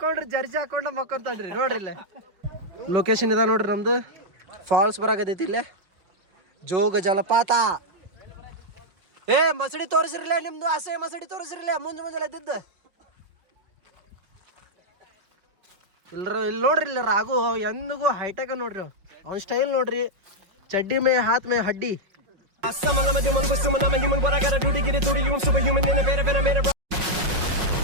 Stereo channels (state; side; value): late; left; 5.5 ms